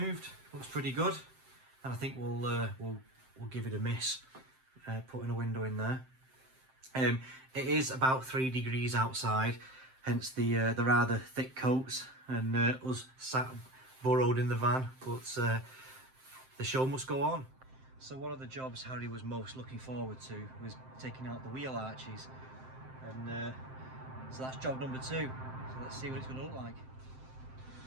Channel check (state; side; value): late; left; 7.7 ms